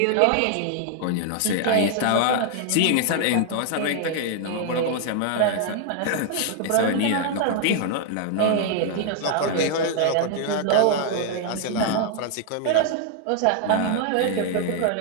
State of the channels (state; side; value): different; both; correlation 0.00